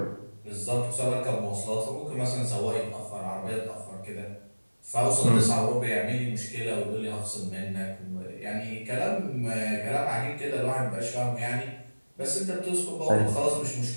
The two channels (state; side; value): inverted; both; correlation -1.00